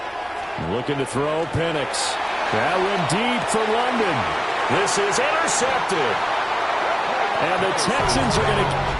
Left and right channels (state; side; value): identical; both; correlation 1.00